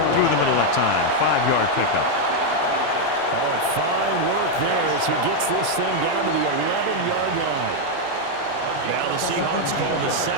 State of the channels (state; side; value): different; both; correlation 0.01